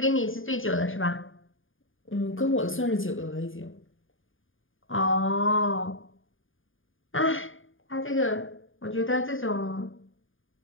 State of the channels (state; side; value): late; right; 0.58 ms